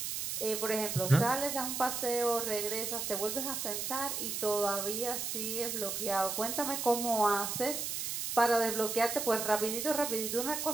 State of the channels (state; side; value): noise; right; hiss, 3 dB below the sound